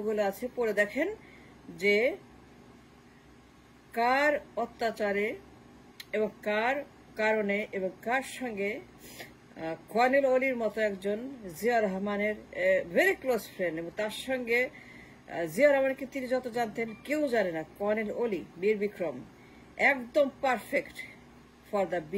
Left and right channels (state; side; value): identical; both; correlation 1.00